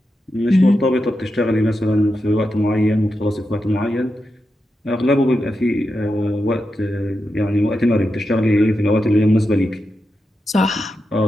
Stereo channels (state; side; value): normal; both; correlation 0.88